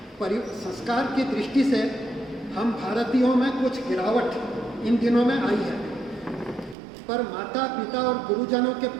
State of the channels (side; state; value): left; drops out; at 6.8 s